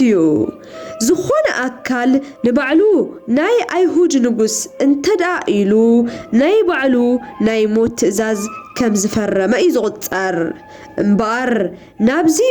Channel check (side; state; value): both; identical; correlation 1.00